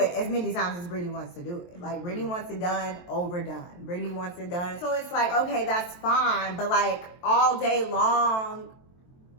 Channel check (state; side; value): late; right; 23 ms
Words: as many times as Brittany wants to do it. Like, Brittany wants it done, overdone. Brittany wants it done. So it's like, okay, that's fine, but like, all day long,